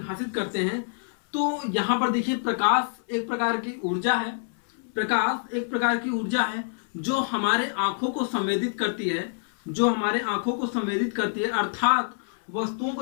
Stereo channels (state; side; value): silent; right; 59 dB below the other